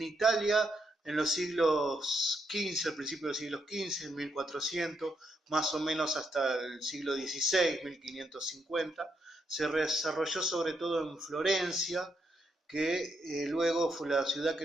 Italia en los siglos XV, al principio del siglo XV, en 1400, más o menos hasta el siglo XVI, 1550. Se desarrolló sobre todo en Florencia, que luego fue la ciudad que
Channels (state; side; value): normal; both; correlation 0.79